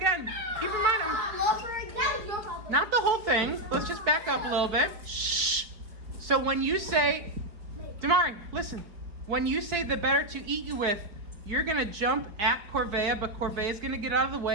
Keep in mind, That was your problem. not the whole thing. Let's just back up a little bit. Shh. So when you say, Damari, listen. When you say the better to eat you with, you're gonna jump at Corvea, but Corvea's gonna get out of the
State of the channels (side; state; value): left; late; 4.8 ms